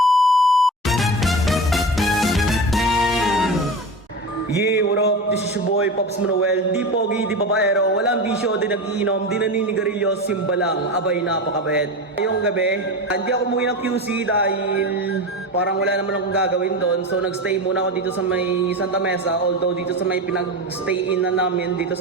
Yeah, what up? This is your boy, Pops Manuel. Di pogi, di babaero, walang bisyo, di nag-iinom, di naninigarilyo, simba lang. Abay, napakabait. Ngayong gabi, hindi ako umuwi ng QC dahil parang wala naman akong gagawin doon. So, nagstay muna ako dito sa may Santa Mesa. Although dito sa may pinag-stay-in na namin, dito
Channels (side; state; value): both; normal; correlation 0.25